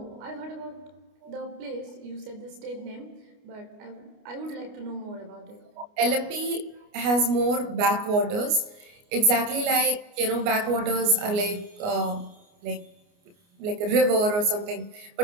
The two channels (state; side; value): late; left; 29 ms